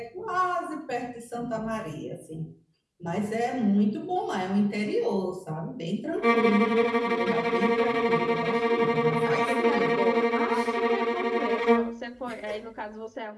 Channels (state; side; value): identical; both; correlation 1.00